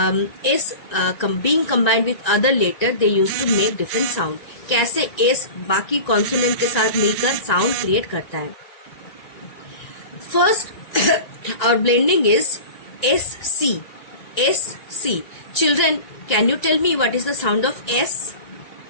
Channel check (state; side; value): late; right; 1.9 ms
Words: S being combined with other letter they used to make different sound. कैसे S बाकी consonant के साथ मिलकर sound create करता है. First, our blending is SC. SC. Children, can you tell me what is the sound of S?